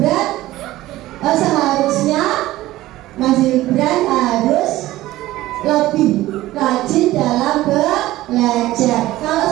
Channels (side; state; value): left; quieter; 16.3 dB